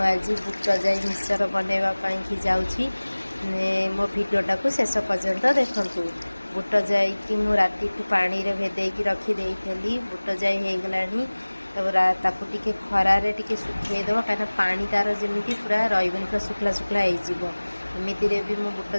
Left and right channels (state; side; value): inverted; both; correlation -1.00